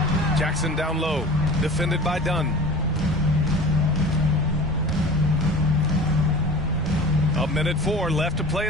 Jackson down low. Defended by Dunn. A 1:04 left to play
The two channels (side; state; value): both; normal; correlation 0.39